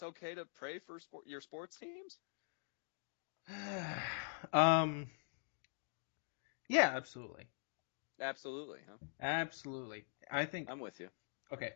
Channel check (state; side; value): silent; right; digital silence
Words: okay to pray for your sports teams? Yeah, absolutely. Absolutely, huh? Absolutely. I think I'm with you. Okay.